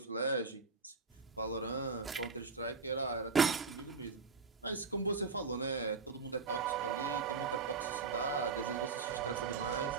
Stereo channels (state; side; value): quieter; left; 4.7 dB